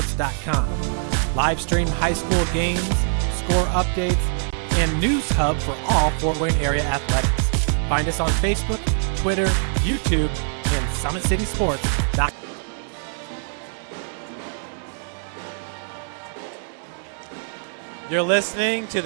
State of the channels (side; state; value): left; silent; digital silence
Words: Live stream high school games, score updates, and news hub for all Fort Wayne area athletics. Find us on Facebook, Twitter, YouTube, and summitcitysports.com. You're listening to